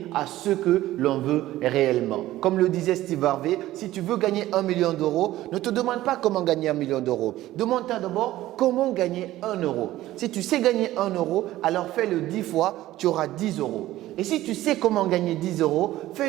à ce que l'on veut réellement. Comme le disait Steve Harvey, si tu veux gagner 1 million d'euros, ne te demande pas comment gagner 1 million d'euros. Demande-toi d'abord comment gagner 1 euro. Si tu sais gagner 1 euro, alors fais-le 10 fois, tu auras 10 euros. Et si tu sais comment gagner 10 euros,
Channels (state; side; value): quieter; left; 15.3 dB